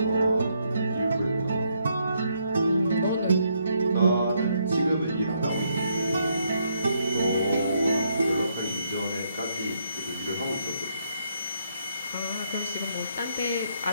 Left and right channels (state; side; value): inverted; both; correlation -0.75